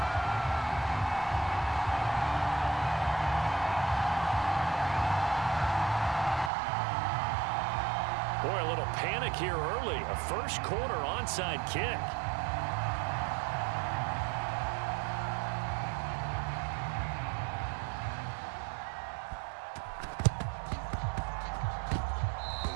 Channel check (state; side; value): drops out; left; at 6.5 s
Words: Boy, a little panic here early. A first quarter onside kick.